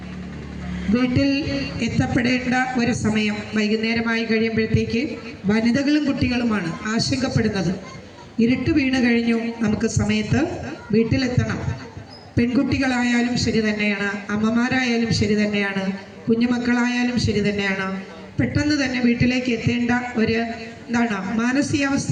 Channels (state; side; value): identical; both; correlation 1.00